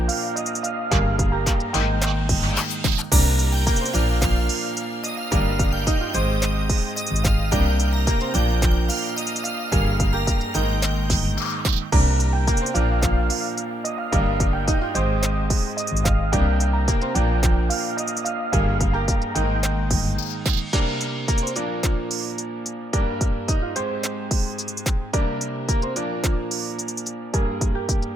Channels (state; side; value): normal; both; correlation 0.82